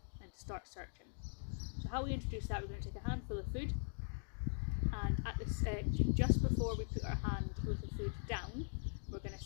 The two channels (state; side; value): silent; right; digital silence